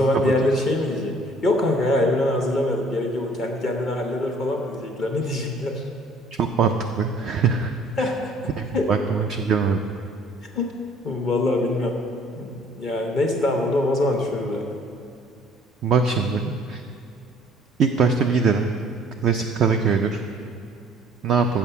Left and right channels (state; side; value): normal; both; correlation 0.56